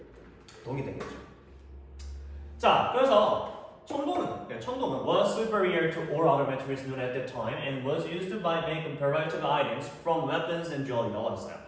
동이 되겠죠. 자, 그래서 청동은 was superior to all other materials known at that time and was used by make comparative items from weapons and jewelry라고 했어요.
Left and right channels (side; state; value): both; identical; correlation 1.00